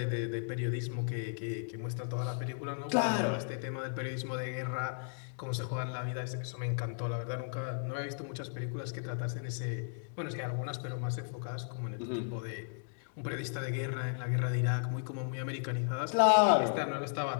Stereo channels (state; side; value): silent; right; digital silence